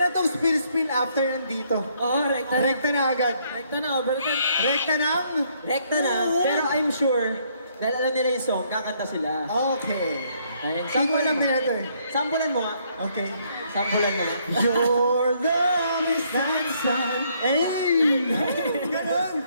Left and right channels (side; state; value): both; inverted; correlation -0.69